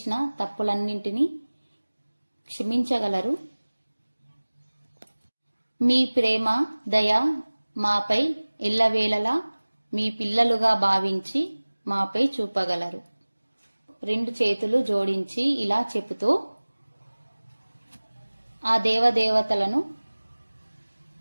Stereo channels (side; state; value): both; inverted; correlation -1.00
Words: తప్పులన్నింటినీ క్షమించగలరు. మీ ప్రేమ, దయ మాపై ఎల్లవేళలా మీ పిల్లలుగా భావించి మాపై చూపగలరు. 2 చేతులు జోడించి ఇలా చెబుతూ ఆ దేవదేవతలను